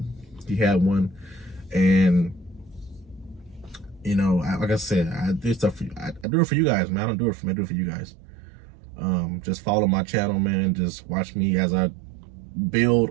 He had one, and you know, like I said, I do stuff for you. I do it for you guys, man. I don't do it for me. I do it for you guys. Just follow my channel, man. Just watch me as I build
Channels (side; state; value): left; drops out; at 6.2 s